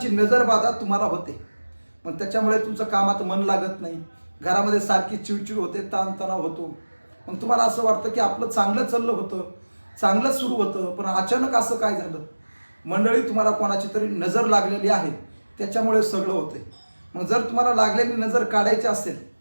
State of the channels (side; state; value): both; inverted; correlation -1.00